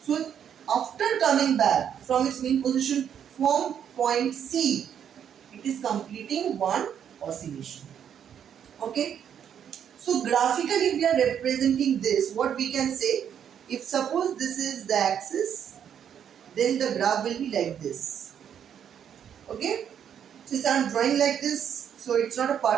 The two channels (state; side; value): quieter; left; 8.7 dB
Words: So after coming back from its mean position from point C, it is completing one oscillation. Okay. So graphically we are representing this. What we can say, if suppose this is the axis, then the graph will be like this. Okay. Since I am drawing like this, so it's not a